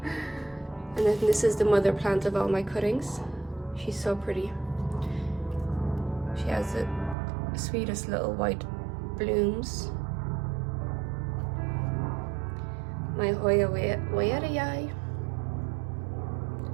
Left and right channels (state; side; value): drops out; left; at 7.2 s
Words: And then this is the mother plant of all my cuttings. She's so pretty. She has the sweetest little white blooms. my Hoya Hoya.